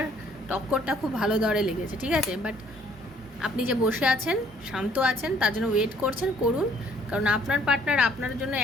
টক্করটা খুব ভালো দরে লেগেছে, ঠিক আছে? বাট আপনি যে বসে আছেন, শান্ত আছেন, তার জন্য ওয়েট করছেন, করুন। কারণ আপনার পার্টনার আপনার জন্য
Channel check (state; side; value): normal; both; correlation 0.61